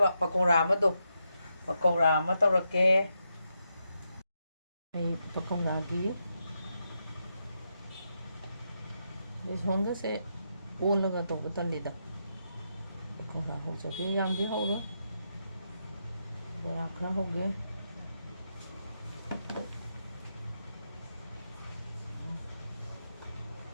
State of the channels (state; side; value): inverted; both; correlation -0.84